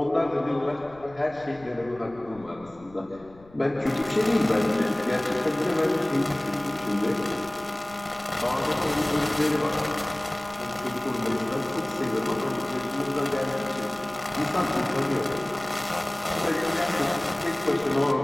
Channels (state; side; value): noise; left; rumble, 24 dB below the sound